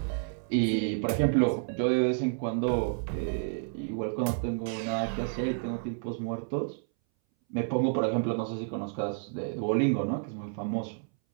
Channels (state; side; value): silent; left; 58 dB below the other